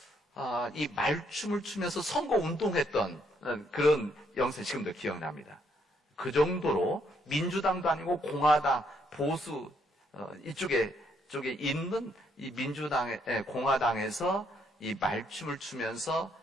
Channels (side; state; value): both; normal; correlation 0.72